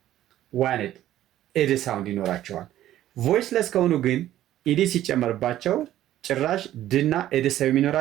ዋንድ ኤድ ሳውንድ ይኖራቸዋል። ቮይስለስ ከሆኑ ግን ኢዲ ሲጨመርባቸው ጭራሽ ድና ኤድ ሰው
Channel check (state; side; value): quieter; left; 13.1 dB